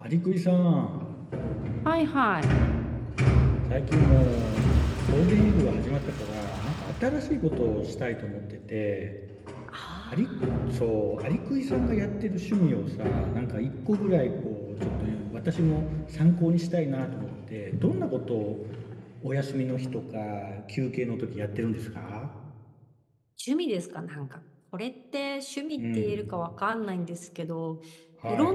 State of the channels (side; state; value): both; identical; correlation 1.00